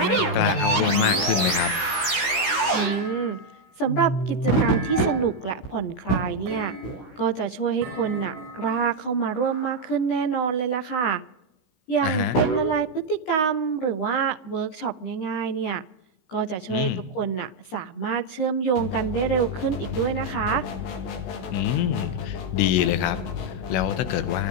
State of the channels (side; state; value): right; late; 16 ms